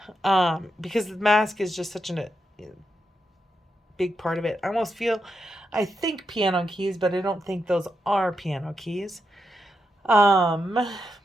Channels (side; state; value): both; normal; correlation 0.85